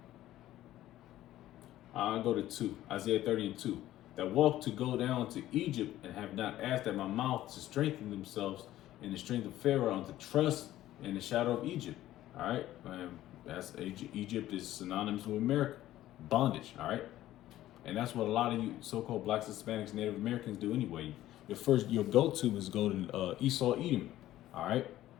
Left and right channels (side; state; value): right; quieter; 14.2 dB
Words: I'll go to 2, Isaiah 30 and 2. That walk to go down to Egypt and have not asked at my mouth to strengthen themselves in the strength of Pharaoh and to trust in the shadow of Egypt. All right, that's Egypt is synonymous with America, bondage. All right, and that's what a lot of you so-called blacks, Hispanics, Native Americans do anyway. Your go-to is go to Esau, Edom. All right,